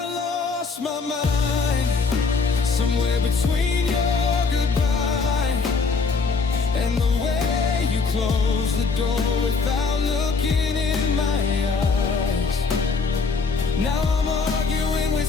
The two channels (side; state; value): right; quieter; 4.6 dB